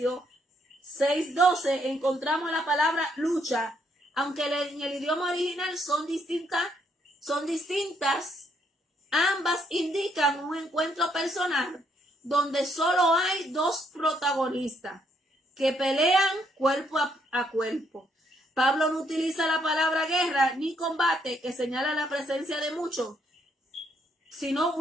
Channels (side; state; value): both; normal; correlation 0.72